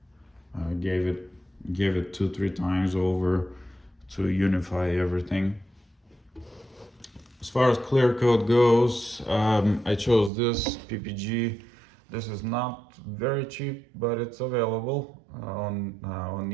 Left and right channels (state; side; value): drops out; left; at 10.3 s